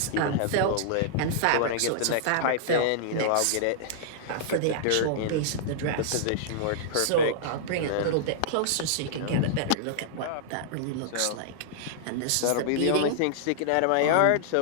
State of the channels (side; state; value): both; different; correlation -0.02